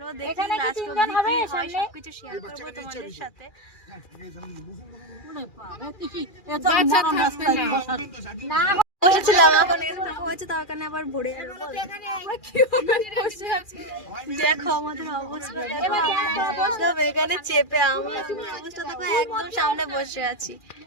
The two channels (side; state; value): right; late; 2.4 ms